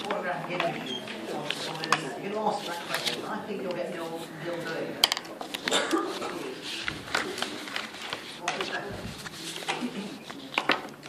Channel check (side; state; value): both; identical; correlation 1.00